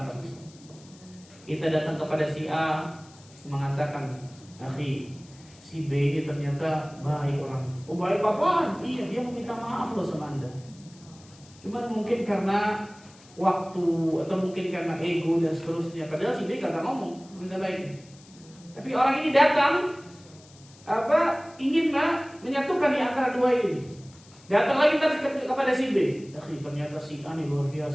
Kita datang kepada si A mengatakan, "Akhi, si B ini ternyata baik orang." "Oh, baik apaan?" "Iya, dia meminta maaf loh sama Anda. Cuman mungkin karena waktu atau mungkin karena ego dan seterusnya." Padahal si B kagak ngomong minta baik. Tapi orang ini datang ingin menyatukan di antara dua ini. Datang lagi kepada si B. "Akhi, ternyata si A ini luar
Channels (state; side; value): noise; left; hiss, 25 dB below the sound